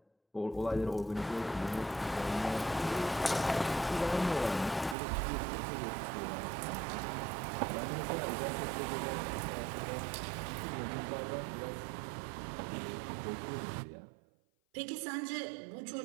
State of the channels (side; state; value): left; drops out; at 5.0 s